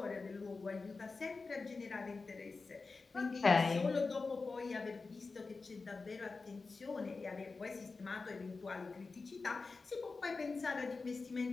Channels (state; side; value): quieter; right; 4.1 dB